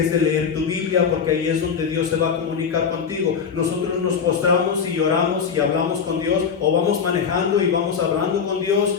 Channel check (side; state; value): right; quieter; 6.5 dB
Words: de leer tu Biblia, porque ahí es donde Dios se va a comunicar contigo. Nosotros nos postramos y oramos y hablamos con Dios, o vamos manejando y vamos hablando con Dios,